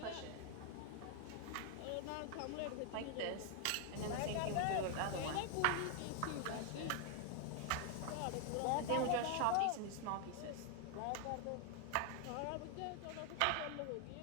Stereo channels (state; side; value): different; both; correlation 0.00